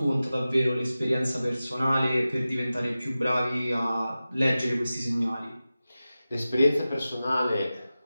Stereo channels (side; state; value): both; inverted; correlation -0.95